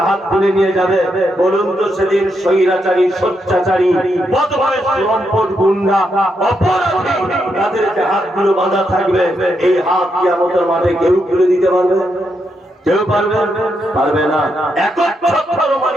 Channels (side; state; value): both; normal; correlation 0.81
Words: হাত খুলে নিয়ে যাবে। বলুন তো সেদিন স্বৈরাচারী, স্বৈরাচারী, বদমাইশ, লম্পট, গুন্ডা, অপরাধী তাদেরকে হাতগুলো বাঁধা থাকবে, এই হাত কিয়ামতের মাঠে কেউ খুলে দিতে পারবে? কেউ পারবে? পারবে না। একচ্ছত্র